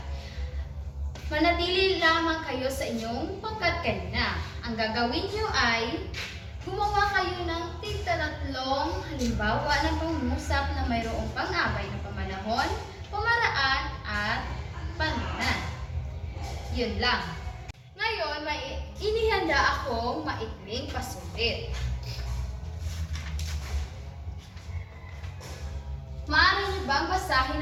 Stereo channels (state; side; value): identical; both; correlation 1.00